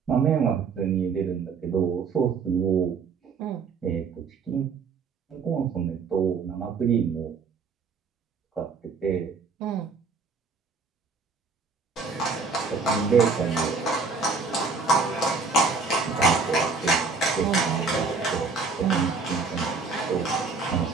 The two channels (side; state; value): left; quieter; 4.7 dB